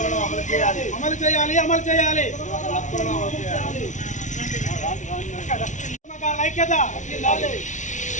అమలు చేయాలి, అమలు చేయాలి. ఉద్యమకారుల ఐక్యత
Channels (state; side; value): late; right; 0.36 ms